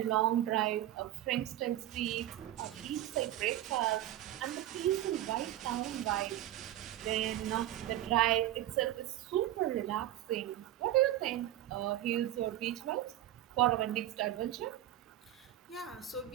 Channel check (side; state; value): left; quieter; 13.6 dB